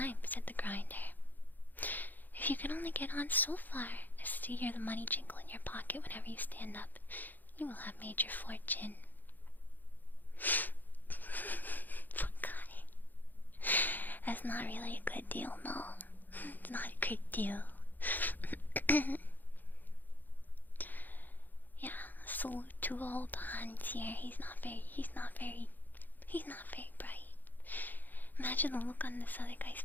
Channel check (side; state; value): right; late; 0.086 ms